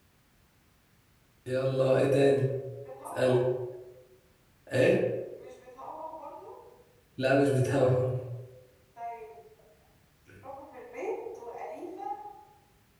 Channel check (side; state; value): both; identical; correlation 1.00